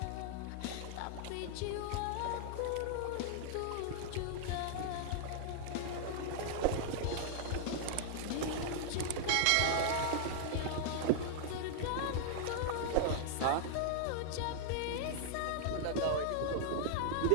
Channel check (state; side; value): different; both; correlation -0.01